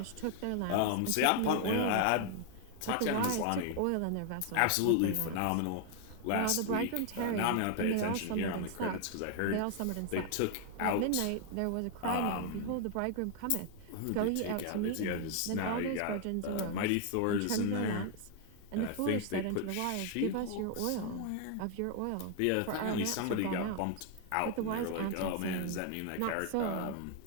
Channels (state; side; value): different; both; correlation 0.00